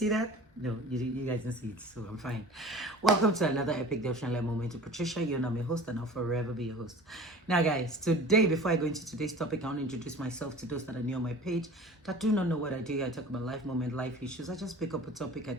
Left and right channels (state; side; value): normal; both; correlation 0.41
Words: that? No, you guys didn't see it, so I'm fine. Welcome to another epic devotional moment to Patricia. You know, I'm your host and I'll forever be your host. Now guys, today, before I go into today's topic, I want to introduce myself to those that are new on my page that do not know what I do. I talk about life moment, life issues. I just pick up a topic, I